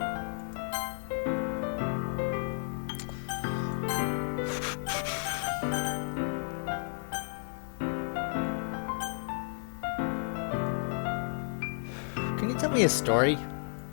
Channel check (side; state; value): right; silent; 56 dB below the other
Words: Can you tell me a story?